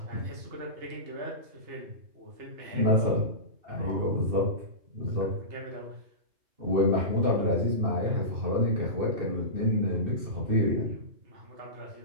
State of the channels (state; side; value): late; left; 2.6 ms